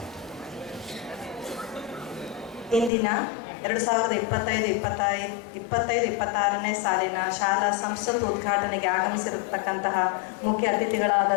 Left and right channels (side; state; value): right; drops out; at 2.9 s